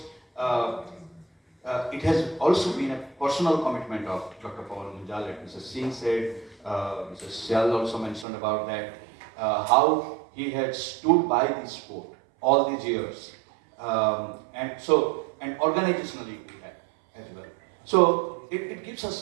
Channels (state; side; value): drops out; left; at 8.2 s